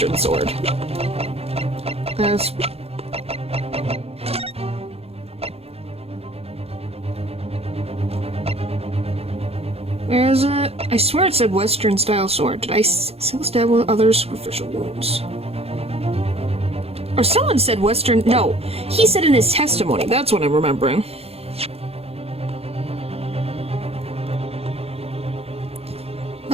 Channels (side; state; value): left; late; 0.29 ms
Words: sword. That's... Where is it? I swear it said Western style sword. Did I still stab with other superficial wounds? Or someone said Western... No, he said in his testimony. That's what I'm remembering.